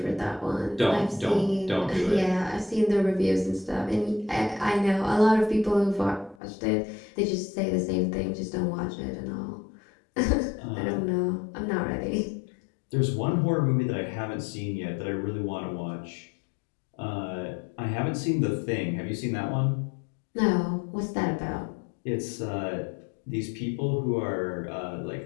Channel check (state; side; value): drops out; right; at 6.4 s